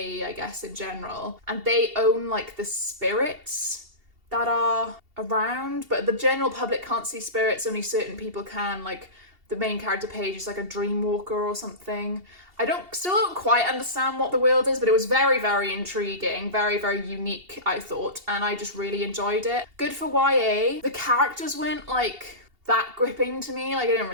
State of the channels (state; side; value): late; left; 2.7 ms